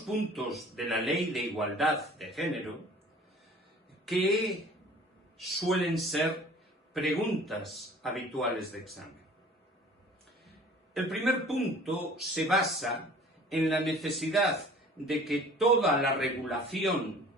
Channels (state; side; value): normal; both; correlation 0.48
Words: de la Ley de Igualdad de Género que suelen ser preguntas habituales de examen. El primer punto se basa en la necesidad de que toda la regulación